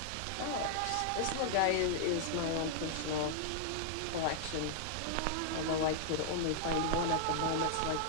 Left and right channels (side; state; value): both; different; correlation -0.01